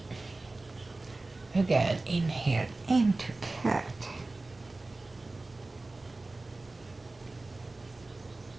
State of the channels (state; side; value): quieter; left; 3.1 dB